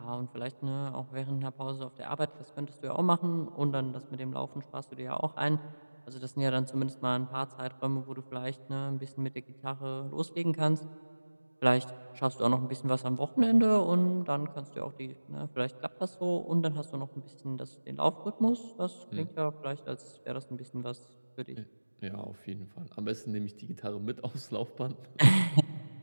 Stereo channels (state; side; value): inverted; both; correlation -1.00